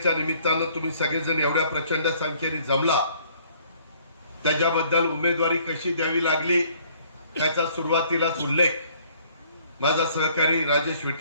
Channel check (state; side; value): inverted; both; correlation -0.60